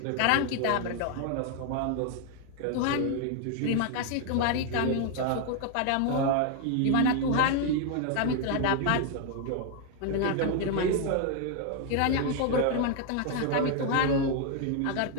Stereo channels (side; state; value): both; different; correlation 0.00